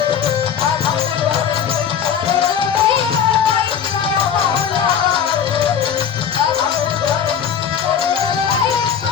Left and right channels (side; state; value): right; quieter; 8.0 dB